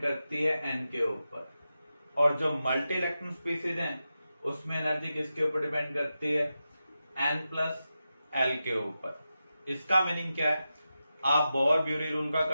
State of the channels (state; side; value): inverted; both; correlation -0.91